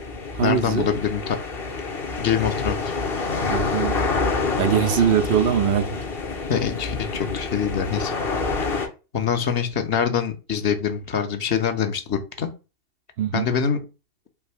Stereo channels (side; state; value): left; late; 2.7 ms